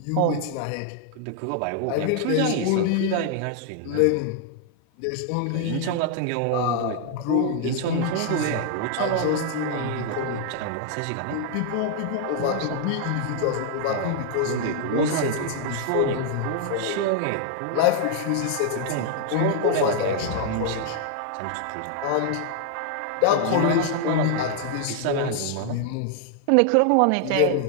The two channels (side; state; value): both; different; correlation 0.00